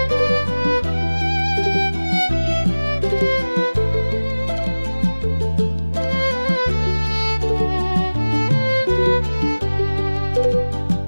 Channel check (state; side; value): inverted; both; correlation -1.00